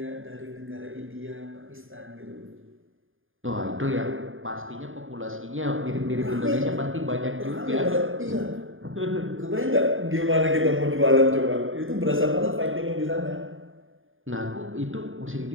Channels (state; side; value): late; left; 0.59 ms